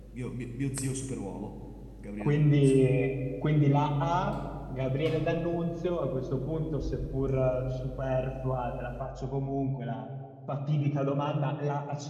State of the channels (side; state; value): both; identical; correlation 1.00